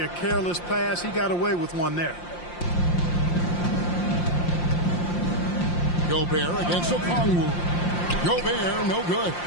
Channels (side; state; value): right; late; 5.7 ms